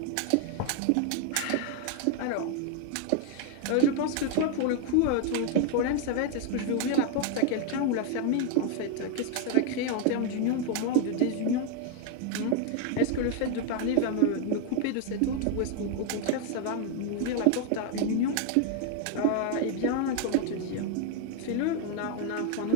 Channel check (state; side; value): different; both; correlation 0.00